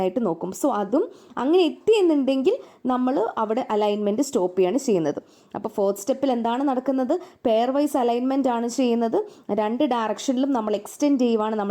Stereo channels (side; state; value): both; identical; correlation 1.00